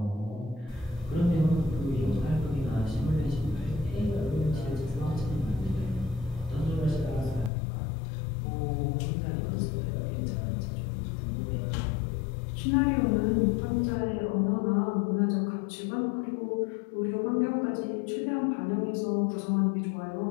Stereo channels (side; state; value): right; drops out; at 7.5 s